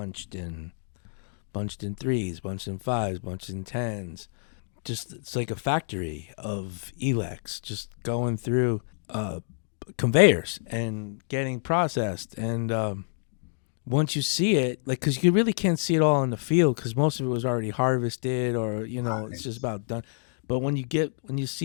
in 3s, bunched in 5s, bunched in 10s. Just it's like a factory of Elex just going through conveyors and getting processed. And once you see it, because you really can't see it all in the field because most of it was already harvested or it's just about done. But when you get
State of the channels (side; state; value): right; silent; digital silence